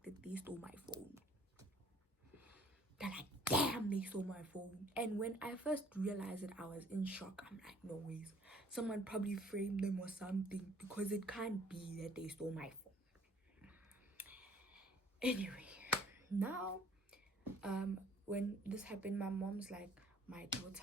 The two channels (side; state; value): both; normal; correlation 0.57